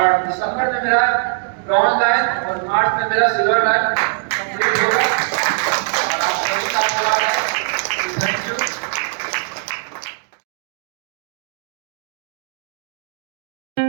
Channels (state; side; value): silent; left; digital silence